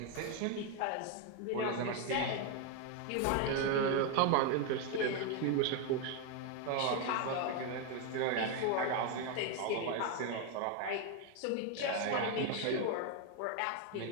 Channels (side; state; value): both; different; correlation 0.01